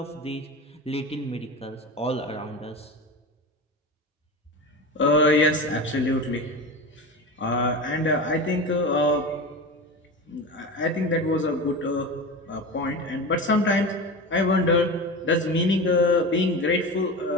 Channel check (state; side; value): normal; both; correlation 0.27